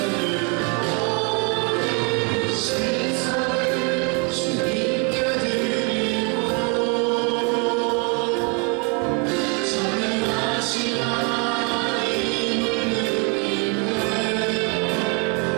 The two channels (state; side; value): quieter; left; 34.7 dB